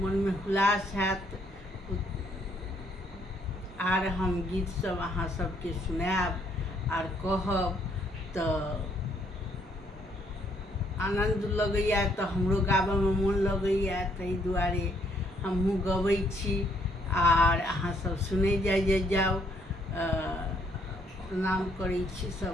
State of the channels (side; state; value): both; normal; correlation 0.69